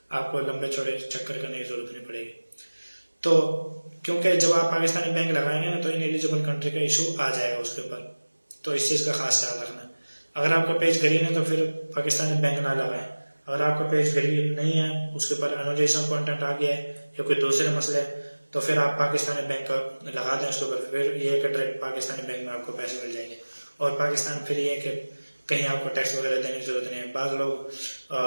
आपको लंबे चौड़े चक्कर करने की जरूरत नहीं पड़ेगी। तो क्योंकि जब आप पाकिस्तानी बैंक लगाएंगे ना, तो इन एलिजिबल कंट्री का इशू आ जाएगा उसके ऊपर, तो इस चीज़ का खास ख्याल रखना। अगर आपका पेज ग्रीन है तो फिर पाकिस्तानी बैंक ना लगाएं। अगर आपका पेज ग्रीन नहीं है, उसके ऊपर अनोटेशन कंटेंट आ गया है या कोई दूसरे मसले है, तो फिर आप पाकिस्तानी बैंक का लगा दें उसके ऊपर, फिर ये है कि डायरेक्ट पाकिस्तानी बैंक में आपको पैसे मिल जाएंगे। और पाकिस्तान फिर ये है कि कहीं आपको टैक्स वगैरह देने की जरूरत नहीं है। बाज़ लोग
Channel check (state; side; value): inverted; both; correlation -1.00